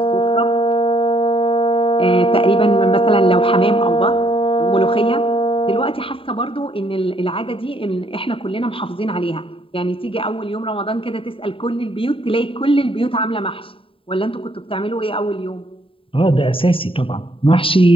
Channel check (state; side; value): late; right; 0.26 ms